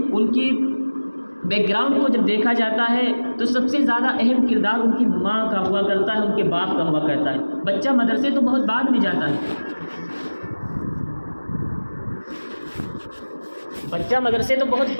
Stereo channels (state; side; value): inverted; both; correlation -1.00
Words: ان کی بیک گراؤنڈ کو جب دیکھا جاتا ہے تو سب سے زیادہ اہم کردار ان کی ماں کا ہوا کرتا ہے، ان کے باپ کا ہوا کرتا ہے۔ بچہ مدرسے تو بہت بعد میں جاتا ہے، بچہ مدرسے تو بہت